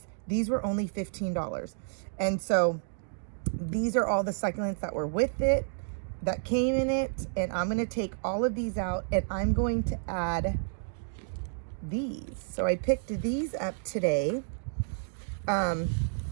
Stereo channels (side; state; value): left; silent; digital silence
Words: These were only $15. And so these are all the succulents that were with it, that came in it. And I'm going to take all of these out and I'm going to add these. So I picked these up today.